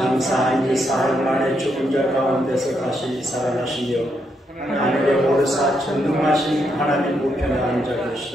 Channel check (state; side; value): normal; both; correlation 0.79